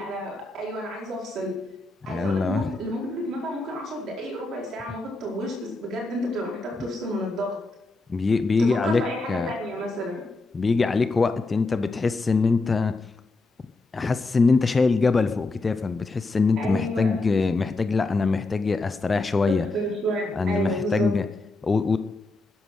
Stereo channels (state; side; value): quieter; right; 3.3 dB